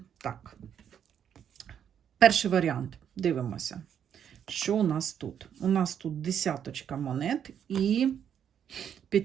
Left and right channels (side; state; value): left; quieter; 8.7 dB